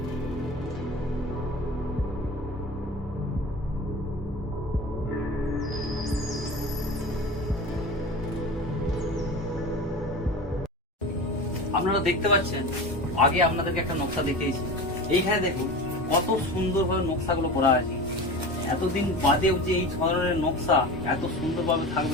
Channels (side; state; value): both; normal; correlation 0.31